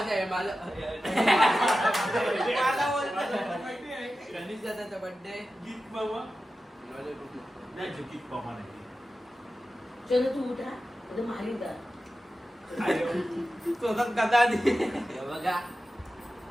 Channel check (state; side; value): normal; both; correlation 0.93